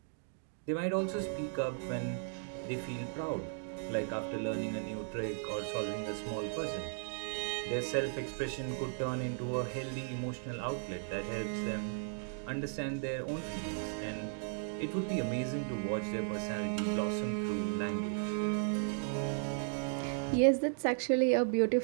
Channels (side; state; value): left; silent; digital silence